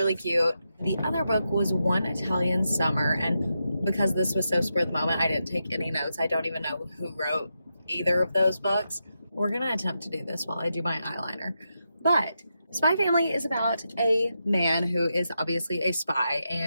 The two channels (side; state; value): both; inverted; correlation -0.86